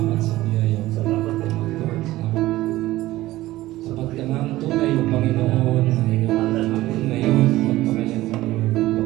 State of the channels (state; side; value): quieter; left; 16.8 dB